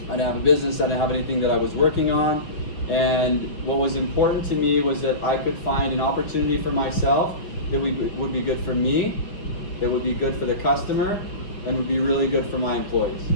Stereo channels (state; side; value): late; right; 5.4 ms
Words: I didn't have a business. I didn't have anything that I was working on. And what was important to me was that I could find an opportunity for myself that would be good for me, that would be good for the customer, and would be really good for my employees,